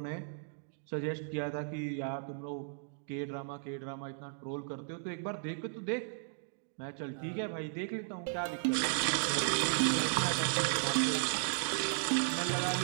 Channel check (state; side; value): silent; left; digital silence